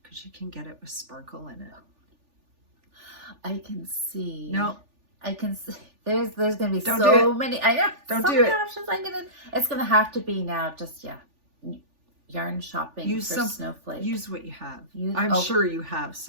because you can get it with sparkle in it. I can see. No. I can see. There's gonna be Don't so many. I know. Don't so do many it. options. It's gonna have to be now. Just yarn shopping Use for snowflakes. Use what you have. I'm sure you have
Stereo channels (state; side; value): late; left; 3.4 ms